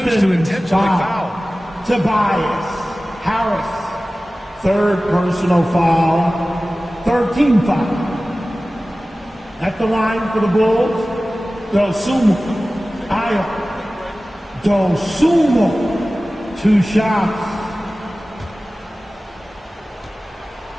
to intentionally foul. Tobias Harris. Third personal foul. 13 foul. At the line for the Bulls, Dosumo. 2 shots.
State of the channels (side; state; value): both; normal; correlation 0.97